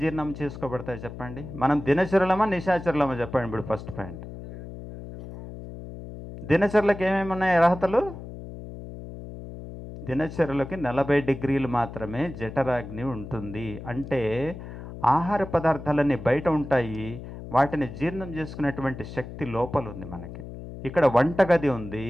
చేసుకోబడతాయి చెప్పండి? మనం దినచరులమా నిశాచరులమా చెప్పండి. ఇప్పుడు ఫస్ట్ పాయింట్, దినచరులకు ఏమేమి ఉన్నాయి అర్హతలు? దినచరులకి 40 డిగ్రీలు మాత్రమే జఠరాగ్ని ఉంటుంది. అంటే ఆహార పదార్థాలన్నీ బయట ఉంటాయి, వాటిని జీర్ణం చేసుకునేటువంటి శక్తి లోపల ఉంది మనకి. ఇక్కడ వంటగది ఉంది,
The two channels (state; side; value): noise; left; hum, 12 dB below the sound